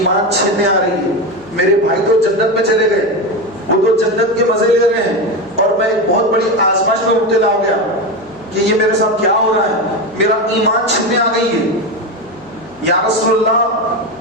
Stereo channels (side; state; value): right; noise; hum, 27 dB below the sound